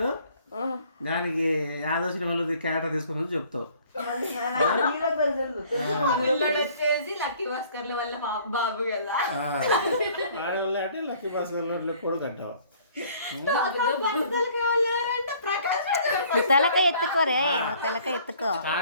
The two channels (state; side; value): inverted; both; correlation -0.56